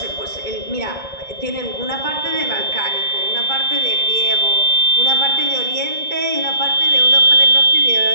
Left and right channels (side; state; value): left; late; 2.2 ms